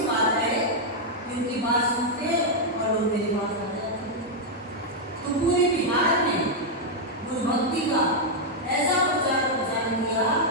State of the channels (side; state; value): both; normal; correlation -0.03